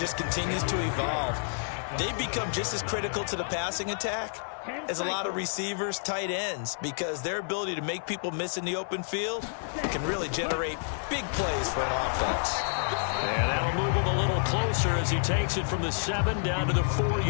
continues to evolve. They become just as critical to the passing attack as a lot of receivers, tight ends, because their ability to make people miss in the open field can really generate big plays for an offense. And that'll move him a little closer as he takes it from the 7 down to the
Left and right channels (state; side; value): silent; right; digital silence